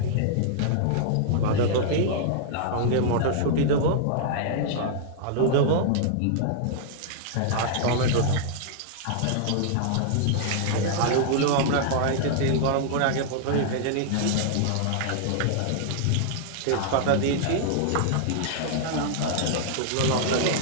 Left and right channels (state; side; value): different; both; correlation -0.01